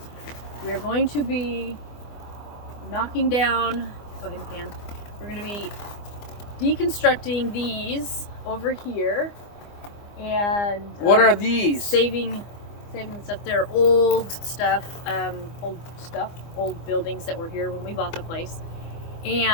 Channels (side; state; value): right; late; 24 ms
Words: we are going to be knocking down, go ahead and pan, we're going to be deconstructing these over here, and what are these? Saving stuff. They're old buildings that were here when we bought the place.